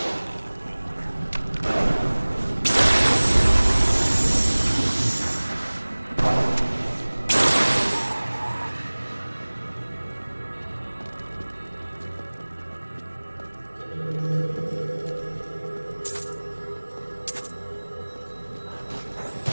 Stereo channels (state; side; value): inverted; both; correlation -1.00